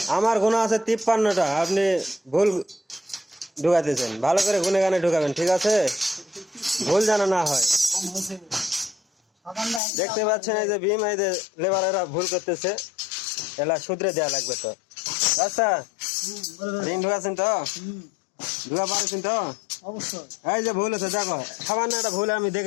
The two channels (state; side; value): drops out; right; at 9.8 s